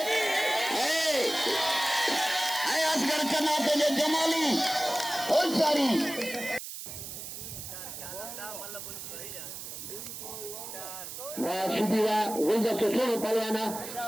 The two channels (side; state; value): right; noise; hiss, 9 dB below the sound